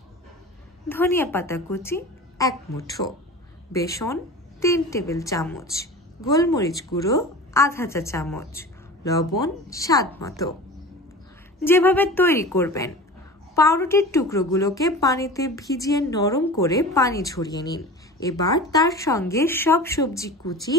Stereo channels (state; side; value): normal; both; correlation 0.35